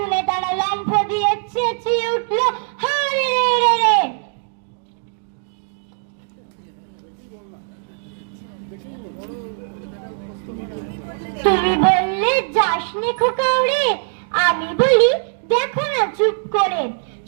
তারা লম্ফ দিয়ে চেঁচিয়ে উঠলো, হারে রে রে। তুমি বললে যাসনি খোকা ওরে, আমি বলি দেখো না চুপ করে।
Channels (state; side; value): silent; left; 64 dB below the other